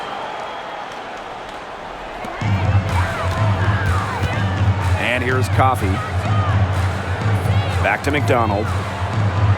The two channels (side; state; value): both; identical; correlation 1.00